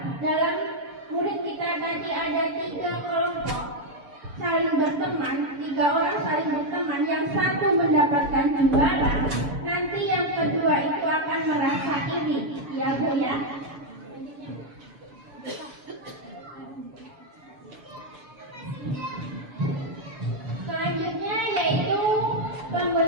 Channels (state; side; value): late; left; 7.0 ms